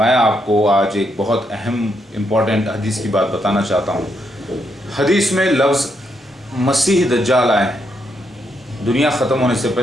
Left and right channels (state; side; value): normal; both; correlation 0.78